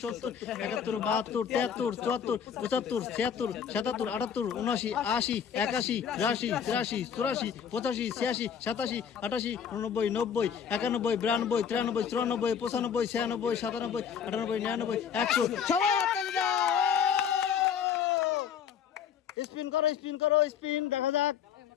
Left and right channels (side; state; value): right; quieter; 7.9 dB